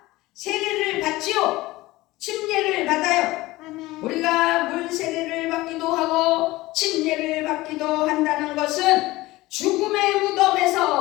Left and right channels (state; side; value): quieter; right; 19.1 dB